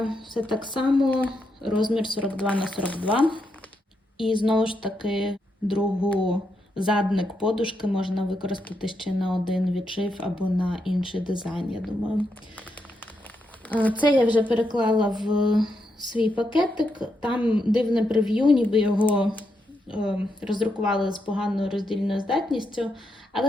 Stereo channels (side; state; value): both; normal; correlation 0.82